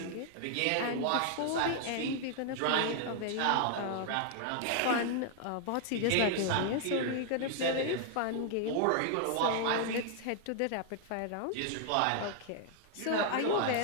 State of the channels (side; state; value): both; different; correlation 0.00